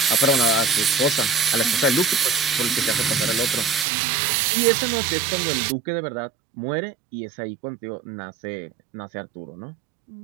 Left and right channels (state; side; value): drops out; left; at 3.9 s